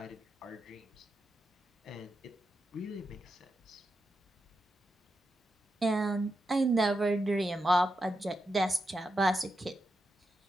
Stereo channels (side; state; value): both; normal; correlation 0.87